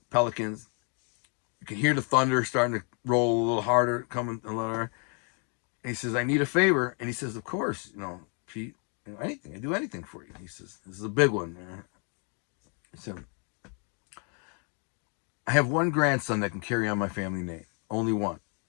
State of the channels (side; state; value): right; quieter; 38.8 dB